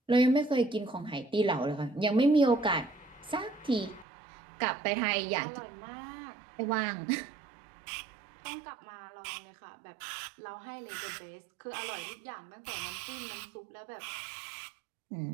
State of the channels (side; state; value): left; drops out; at 4.0 s